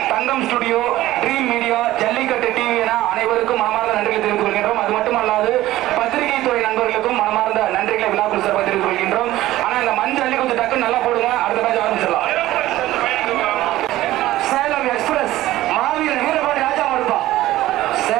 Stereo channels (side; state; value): left; quieter; 15.7 dB